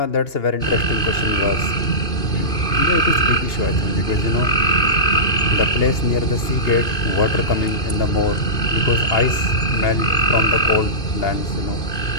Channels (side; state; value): right; late; 2.5 ms